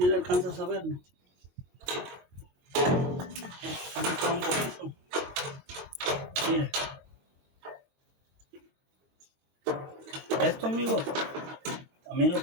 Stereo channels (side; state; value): left; late; 22 ms